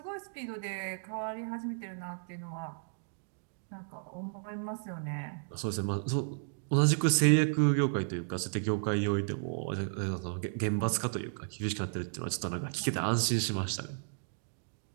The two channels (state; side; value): silent; left; digital silence